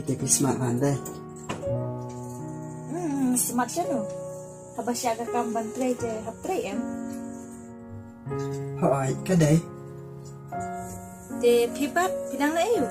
smart van đây. Smart chano. Habasya ka kam bantre je haptre em. Hỏi cái đấy, Te pi pat pinang lai yu.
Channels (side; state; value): both; identical; correlation 1.00